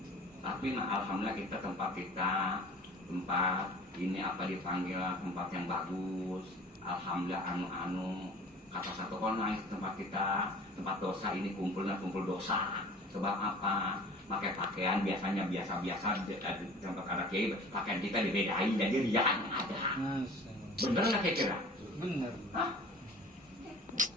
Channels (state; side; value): normal; both; correlation 0.44